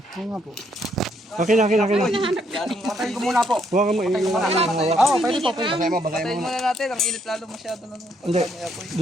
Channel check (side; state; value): both; normal; correlation 0.72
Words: Oo nga po. Akin. Patayin ko muna po. Huwag ka mo Oo, pwede po. Basahin mo Patayin muna natin. Ang init lalo masyado na. Hindi,